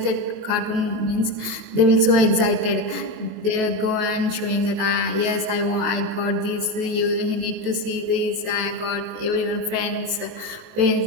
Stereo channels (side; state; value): left; late; 19 ms